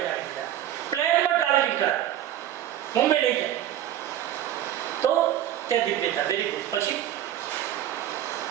દીધા. પ્લેનમાં ટ્રાવેલિંગ કરાવે, મુંબઈ લઈ જાય તો ત્યાં દિવ્યતા. Very good. પછી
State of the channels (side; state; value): left; quieter; 11.9 dB